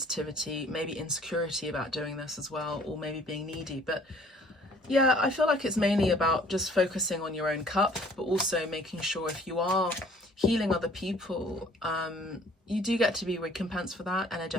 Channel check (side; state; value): both; normal; correlation 0.55